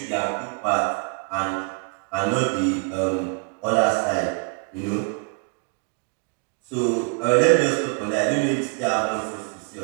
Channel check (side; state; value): left; quieter; 38.0 dB